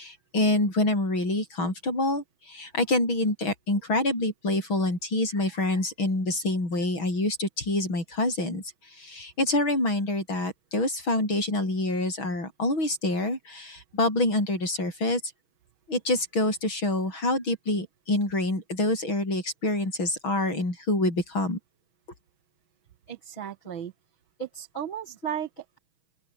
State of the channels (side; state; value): right; late; 6.2 ms